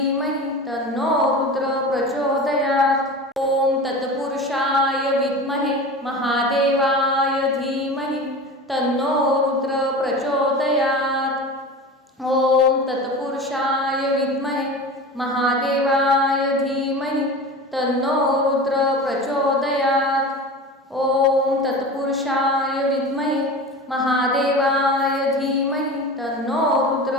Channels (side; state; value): both; normal; correlation 0.32